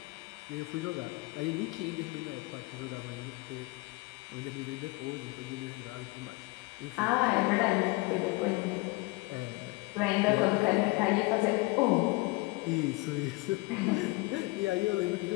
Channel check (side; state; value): right; quieter; 24.8 dB